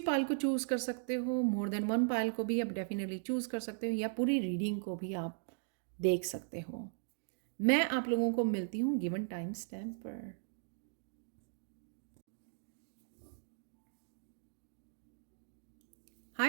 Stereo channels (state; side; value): silent; left; digital silence